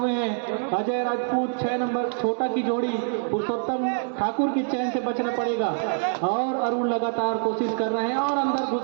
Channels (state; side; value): silent; left; digital silence